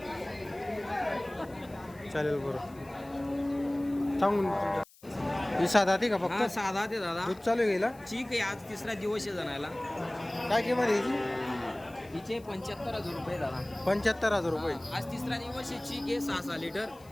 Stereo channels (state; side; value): noise; left; hiss, 26 dB below the sound